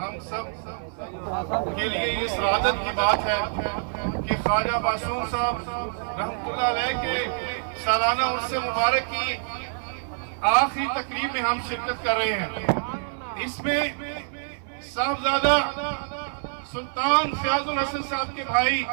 سب کے لیے یہ سعادت کی بات ہے کہ خواجہ معصوم صاحب رحمۃ اللہ علیہ کے سالانہ عرس مبارک کی آخری تقریب میں ہم شرکت کر رہے ہیں۔ اس میں صاحبزادہ سلطان فیاض الحسن صاحب کے بھائی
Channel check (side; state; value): left; silent; digital silence